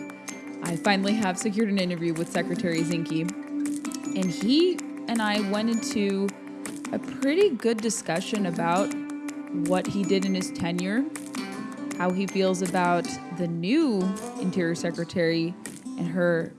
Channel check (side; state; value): both; identical; correlation 1.00